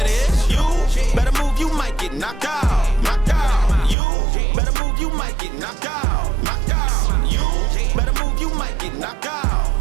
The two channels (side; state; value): left; drops out; at 4.0 s